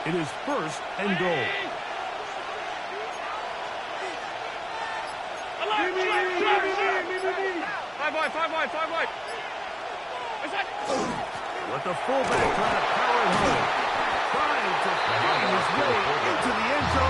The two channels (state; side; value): identical; both; correlation 1.00